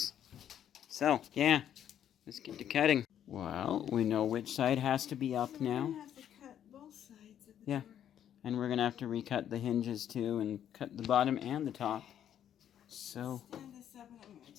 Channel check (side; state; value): right; quieter; 10.0 dB